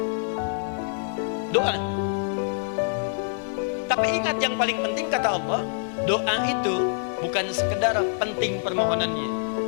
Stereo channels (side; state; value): right; silent; 61 dB below the other